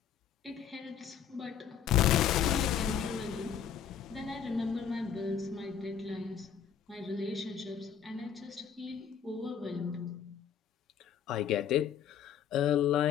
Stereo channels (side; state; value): right; quieter; 8.4 dB